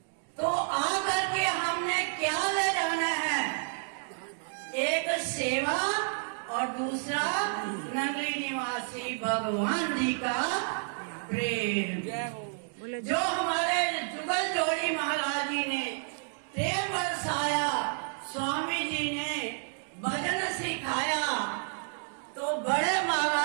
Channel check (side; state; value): left; silent; 58 dB below the other